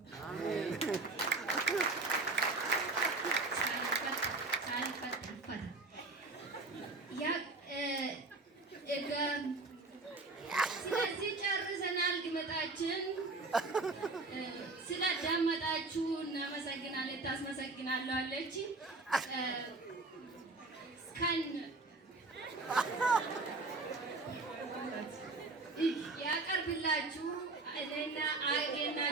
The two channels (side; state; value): left; quieter; 3.4 dB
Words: ስለዚህ ጨርሰናል ግመጣችን ስላዳመጣችሁ እናመሰግናለን ታስመሰግናለሁ አለች ከን ያቀርብላችሁ እኔና አጌና